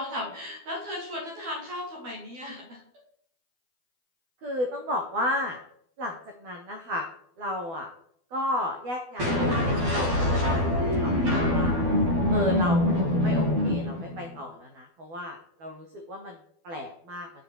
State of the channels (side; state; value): left; late; 12 ms